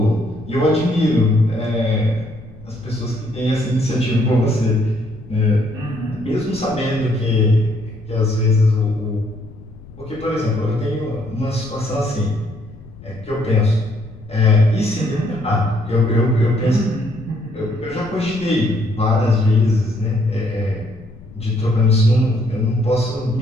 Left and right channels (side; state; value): left; noise; rumble, 20 dB below the sound